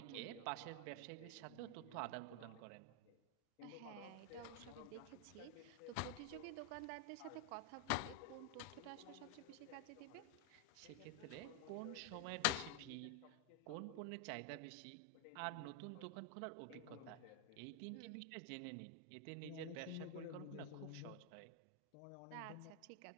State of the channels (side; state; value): both; different; correlation 0.00